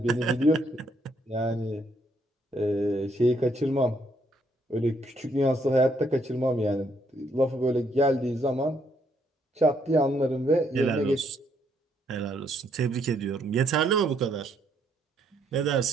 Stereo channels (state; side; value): normal; both; correlation 0.71